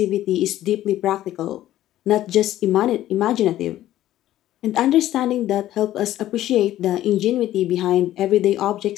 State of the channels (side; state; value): right; quieter; 13.7 dB